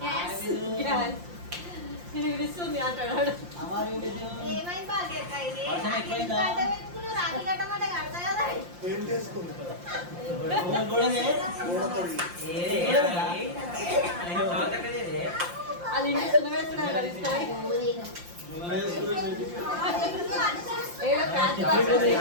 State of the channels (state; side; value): late; left; 5.7 ms